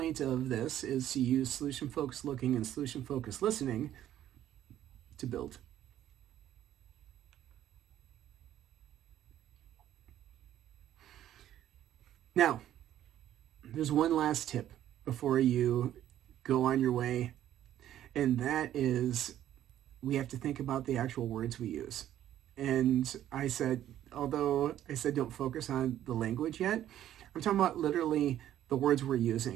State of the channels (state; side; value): quieter; left; 11.9 dB